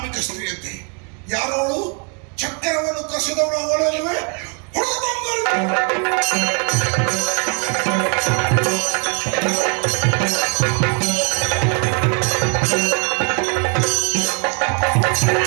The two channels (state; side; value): quieter; left; 37.9 dB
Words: ಸ್ತ್ರೀಯಂತೆ, ಯಾರೋಳು ಚಕ್ರವನ್ನು ಕಸಿದವಳು ಅವಳಲ್ಲವೇ